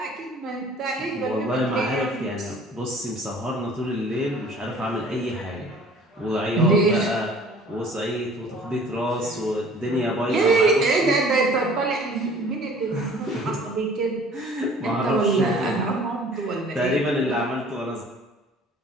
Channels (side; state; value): both; normal; correlation 0.50